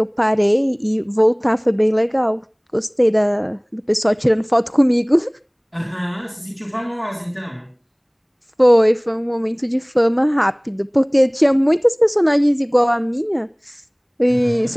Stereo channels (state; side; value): identical; both; correlation 1.00